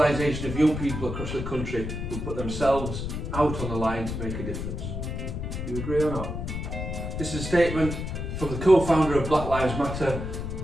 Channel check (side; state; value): left; noise; rumble, 5 dB below the sound